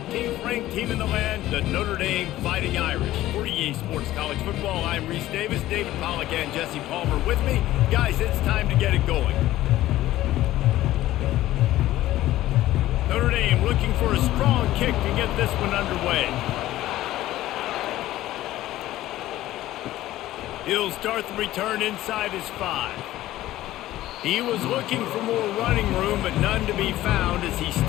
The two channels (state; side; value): quieter; right; 15.1 dB